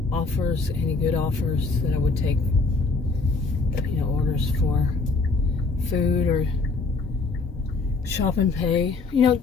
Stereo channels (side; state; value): right; quieter; 4.0 dB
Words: offers, any good offers that I would take, you know, orders for food or shop and pay. You know,